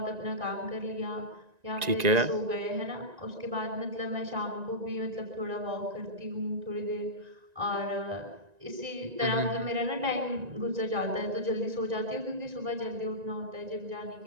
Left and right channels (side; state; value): left; late; 1.9 ms